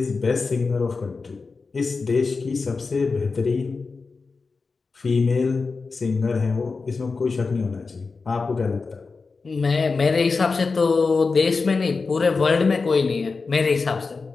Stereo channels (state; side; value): quieter; right; 4.4 dB